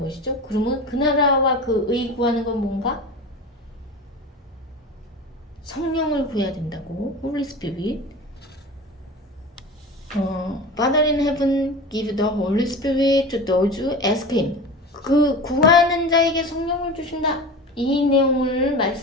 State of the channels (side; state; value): both; normal; correlation 0.31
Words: 그러면 그 나라와 그 의 구하는 건 뭔가? 성령을 구해야 된다고. Holy Spirit. Father in heaven, give the Holy Spirit to those who ask Him. 그 구하는 자에게 성령을 주신다. 이 내용을